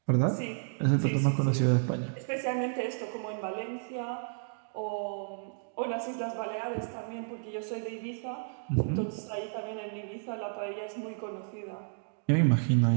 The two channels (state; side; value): silent; left; digital silence